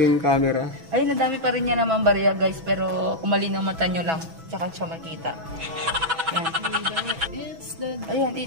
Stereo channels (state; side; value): late; left; 6.1 ms